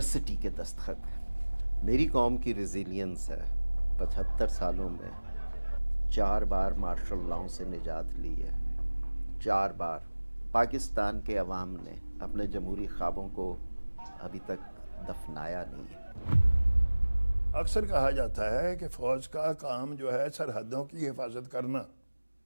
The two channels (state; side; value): inverted; both; correlation -1.00